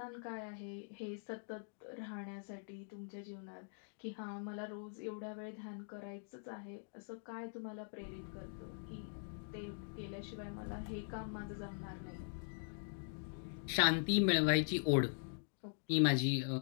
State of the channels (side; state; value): right; silent; digital silence